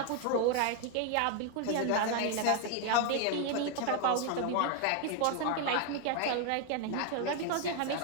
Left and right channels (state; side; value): different; both; correlation 0.01